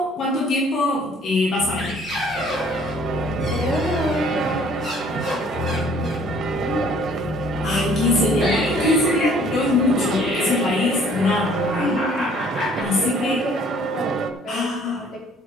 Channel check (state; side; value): normal; both; correlation 0.57